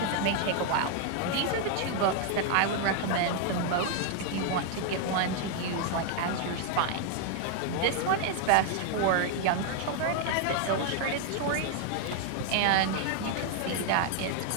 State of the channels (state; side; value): different; both; correlation 0.00